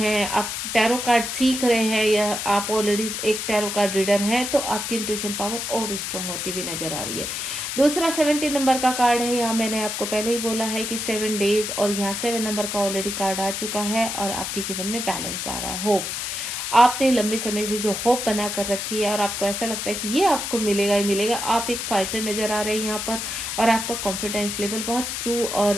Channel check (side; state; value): left; noise; hiss, 4 dB below the sound